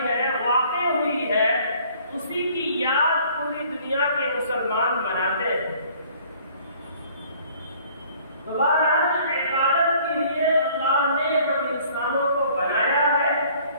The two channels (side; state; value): both; inverted; correlation -0.56